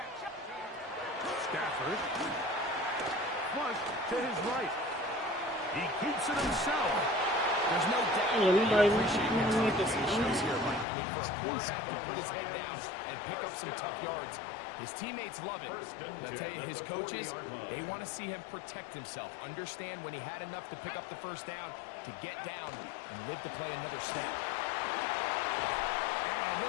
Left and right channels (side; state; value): right; drops out; at 10.9 s